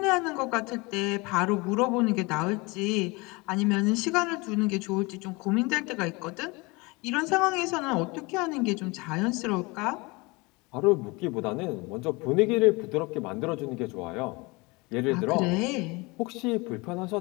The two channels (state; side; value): quieter; right; 25.6 dB